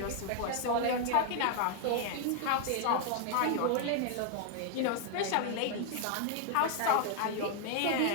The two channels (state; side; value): different; both; correlation 0.00